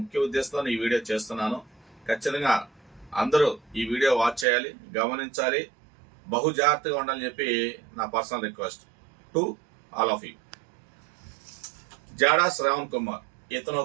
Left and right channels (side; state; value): left; drops out; at 4.5 s